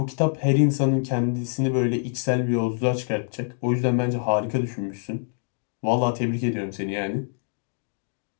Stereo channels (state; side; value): silent; right; digital silence